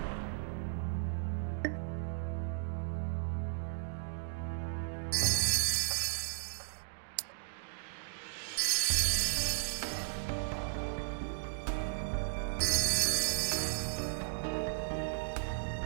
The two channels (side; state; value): left; silent; digital silence